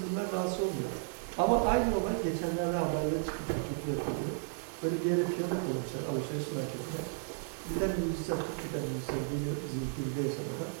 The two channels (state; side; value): silent; left; 55 dB below the other